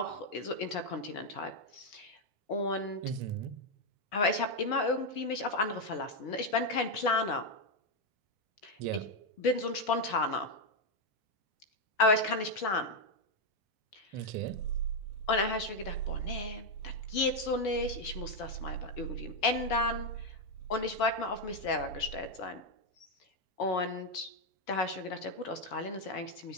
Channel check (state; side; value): late; right; 4.9 ms